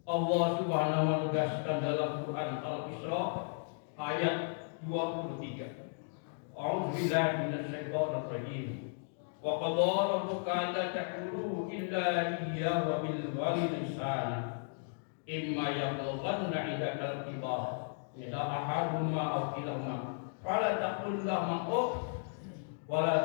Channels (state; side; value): silent; right; digital silence